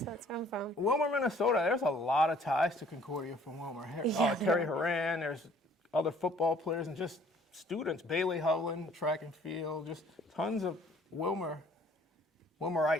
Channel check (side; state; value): both; normal; correlation 0.57